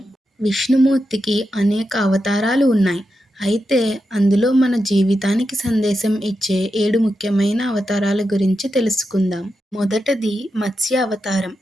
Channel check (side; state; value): both; normal; correlation 0.88